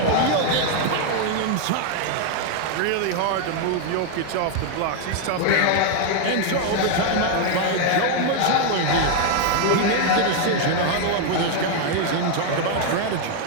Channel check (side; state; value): both; different; correlation 0.01